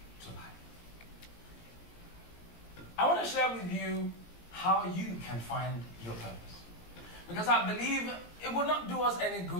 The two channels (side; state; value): right; late; 17 ms